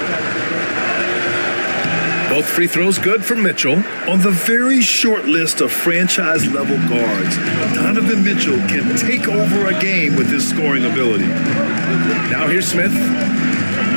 Both free throws good for Mitchell. On the very short list of franchise-level guards, Donovan Mitchell can take over a game with his scoring ability. Now here's Smith.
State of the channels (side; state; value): both; inverted; correlation -1.00